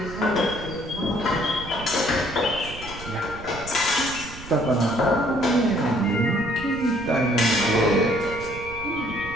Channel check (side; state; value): right; noise; rumble, 14 dB below the sound